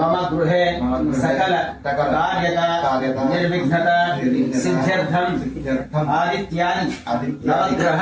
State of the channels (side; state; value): both; identical; correlation 1.00